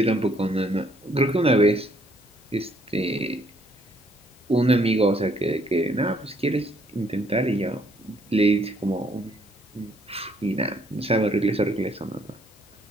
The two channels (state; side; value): normal; both; correlation 0.67